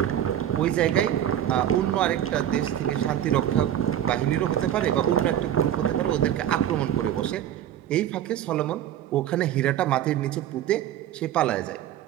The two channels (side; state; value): left; quieter; 11.0 dB